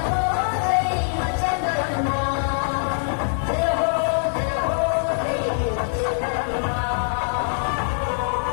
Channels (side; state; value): right; silent; digital silence